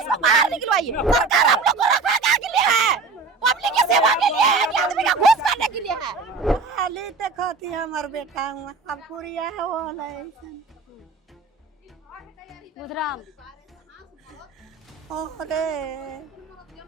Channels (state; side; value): quieter; left; 4.3 dB